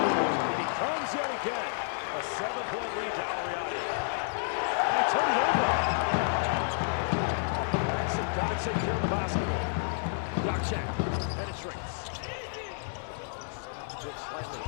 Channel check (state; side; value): silent; right; digital silence